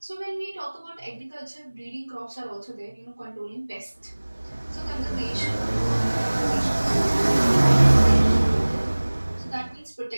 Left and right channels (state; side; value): inverted; both; correlation -1.00